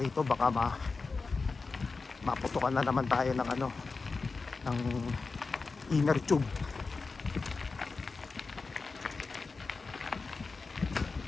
baka maputukan na naman tayo ng ano, ng inner tube.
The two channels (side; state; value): right; quieter; 4.2 dB